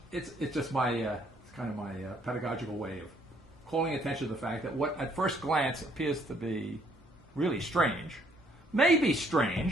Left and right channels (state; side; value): normal; both; correlation 0.66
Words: It's just my it's kind of my pedagogical way of calling attention to the fact that what at first glance appears to be really strange, may be